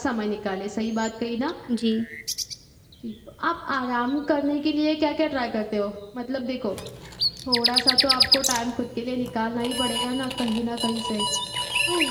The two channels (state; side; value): identical; both; correlation 1.00